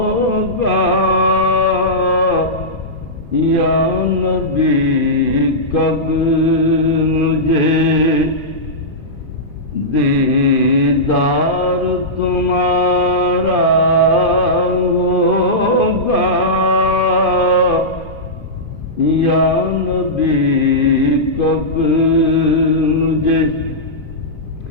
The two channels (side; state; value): right; late; 2.5 ms